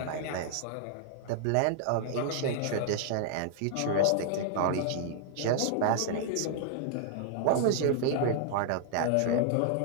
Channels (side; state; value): both; different; correlation -0.01